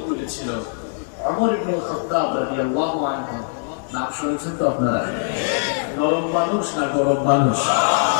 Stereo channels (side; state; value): right; silent; digital silence